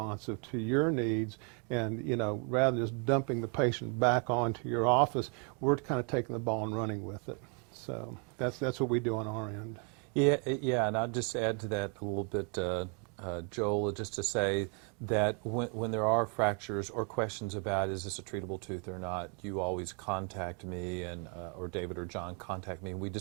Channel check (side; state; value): left; quieter; 37.7 dB